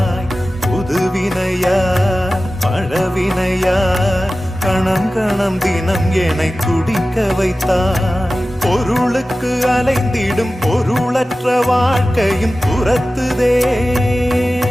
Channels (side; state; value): both; normal; correlation 0.95